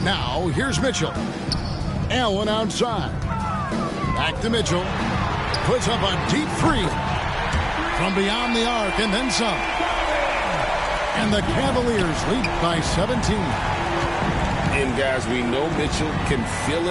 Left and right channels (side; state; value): both; identical; correlation 1.00